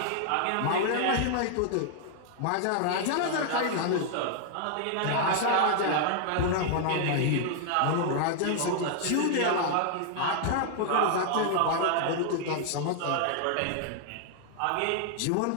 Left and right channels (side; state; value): both; different; correlation 0.00